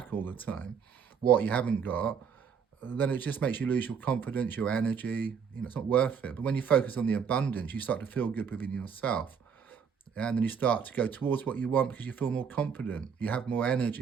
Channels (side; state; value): left; quieter; 6.8 dB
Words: all the time, what you haven't got, then it just makes you lose your confidence, your energy. You know, it's not worth it. But when you focus on the abundance, you start to feel good within yourself. And then you start to go towards what you want because you feel more confident, you have more